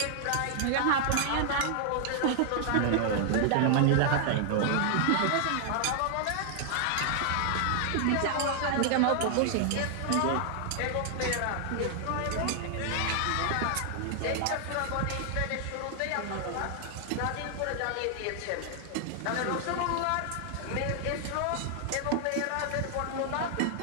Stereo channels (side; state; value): both; different; correlation 0.00